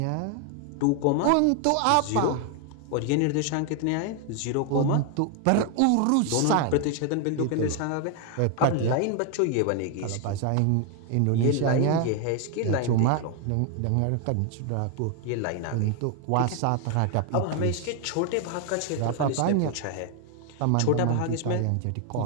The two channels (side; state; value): both; different; correlation 0.01